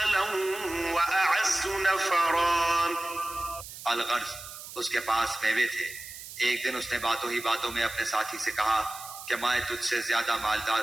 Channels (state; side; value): noise; right; hiss, 13 dB below the sound